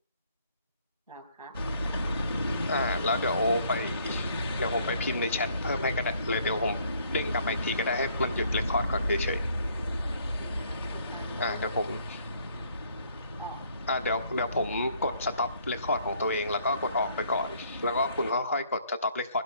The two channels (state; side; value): inverted; both; correlation -0.64